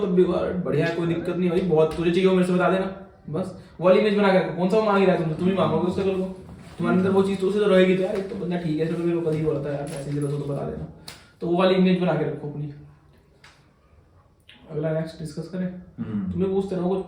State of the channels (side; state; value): both; identical; correlation 1.00